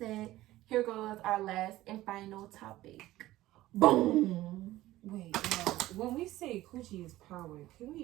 here goes our last and final topic. Boom. Wait, when we say coochie is power, can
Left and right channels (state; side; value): quieter; left; 16.0 dB